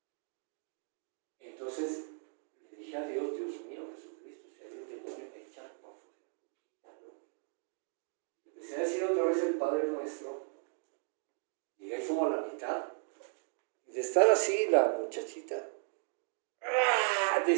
Entonces le dije a Dios, Dios mío, Jesucristo, si hay un demonio, echa por fuera. Empecé a decir otra vez el Padre Nuestro. Llegué como a la mitad. Y de estar así, la muchachita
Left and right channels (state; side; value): silent; left; 54 dB below the other